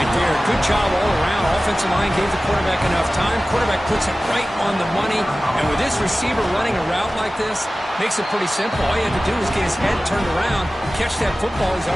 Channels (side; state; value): both; normal; correlation 0.96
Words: there. Good job all around. Offensive line gave the quarterback enough time. Quarterback puts it right on the money. And with this receiver running a route like this, makes it pretty simple. All you have to do is get his head turned around, catch that football. He's